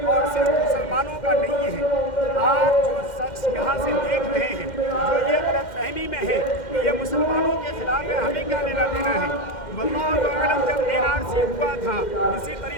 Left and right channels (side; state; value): right; late; 2.1 ms